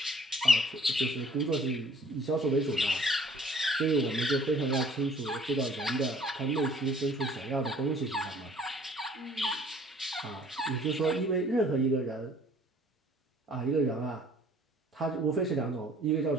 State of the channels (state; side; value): normal; both; correlation 0.55